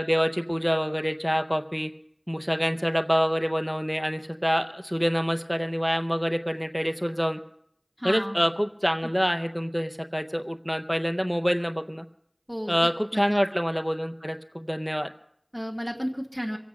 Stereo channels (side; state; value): both; identical; correlation 1.00